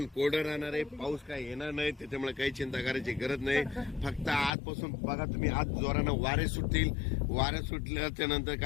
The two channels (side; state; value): right; drops out; at 4.5 s